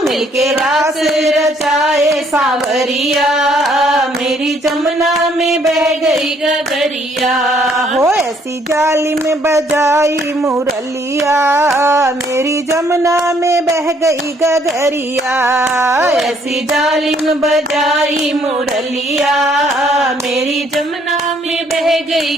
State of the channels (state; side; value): normal; both; correlation 0.66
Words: मिलके रास रचाए सांवरिया, मेरी जमुना में बह गई गगरिया। हो ऐसी जालिम बजाई मुरलिया, मेरी जमुना में बह गई गगरिया। ऐसी जालिम बजाई मुरलिया, मेरी जमुना में बह गई